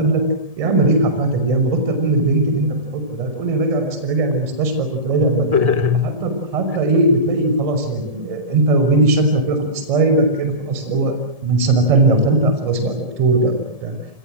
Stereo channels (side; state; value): left; late; 1.7 ms